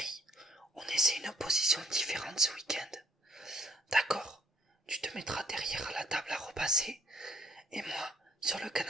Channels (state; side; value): normal; both; correlation 0.60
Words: on essaie une position différente ce week-end. D'accord, tu te mettras derrière la table à repasser, et moi sur le